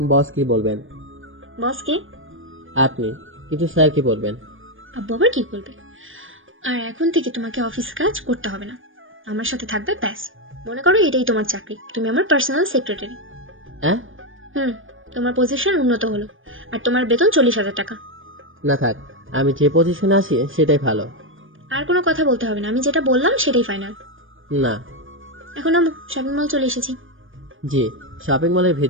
বস কি বলবেন? বস কে? আপনি। কিন্তু স্যার কি বলবেন? আব্বু আবার কি বলবে? আর এখন থেকে তোমাকে অফিস কাজ করতে হবে না, আমার সাথে থাকবে ব্যাস। মনে করো এটাই তোমার চাকরি, তুমি আমার পার্সোনাল সেক্রেটারি। হ্যাঁ? তোমার পজিশন উন্নত হলো, আর তোমার বেতন 40,000 টাকা। না থাক, আমি যে পজিশনে আছি সেটাই ভালো। আর কোনো কথা বলতে হবে না, আমি যেটা বললাম সেটাই ফাইনাল। না। এখন আমি শপিং মল চলে এসেছি। জি, শপিং মলের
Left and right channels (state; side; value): late; left; 0.58 ms